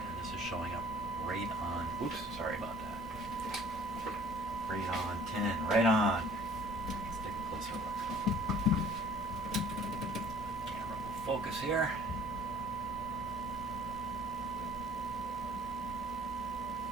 this is showing up right on, oops, sorry about that. Right on, 10, right on. Let's take a closer look. Camera will focus here.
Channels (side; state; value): both; normal; correlation 0.52